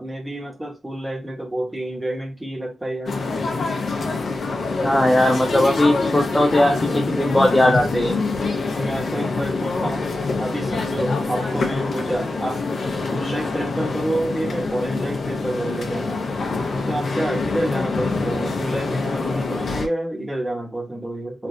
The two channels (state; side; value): normal; both; correlation 0.92